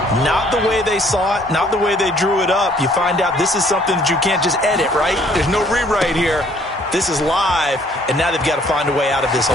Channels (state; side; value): normal; both; correlation 0.61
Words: Not the way they saw it, not the way they drew it up. You find out this is something that you can't just edit, right? There's no rewrite here. This is live, and now they've got to find a way out of this